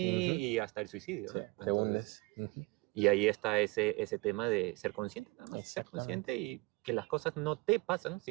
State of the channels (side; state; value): left; quieter; 24.9 dB